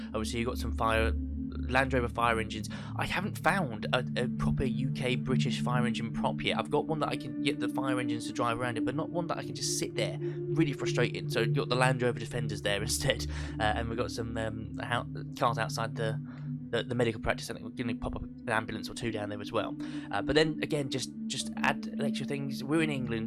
obviously you've got some Land Rover fire engines. I haven't found a proper UK British fire engine prop yet. I've got one that I can get the fire engines to drive around it, but not one that I can just sit there. Really frustrating. So you've got the Land Rover Defenders there instead, and we've got some cars outside the medical practice. I think we're going to pop up an ambulance or two down there as well. But then again, just add extra things. We're in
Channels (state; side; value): identical; both; correlation 1.00